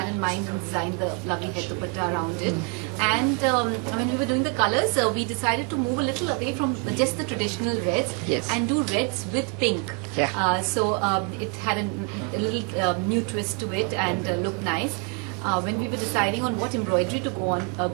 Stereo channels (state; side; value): quieter; left; 32.4 dB